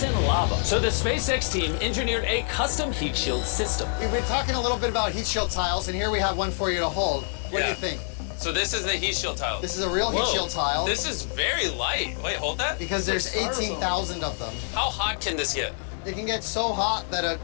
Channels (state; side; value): silent; right; 61 dB below the other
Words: lava. So the SpaceX team engineered a custom heat shield system. We've been talking a little bit about heat shield tiles, and here we have one for you to hold. What do you think? So this is the heat shield tile. This is a real heat shield tile. This is very light. Wait, hold that. Because there's 18,000 of them. How hot can this get? It can get so hot that a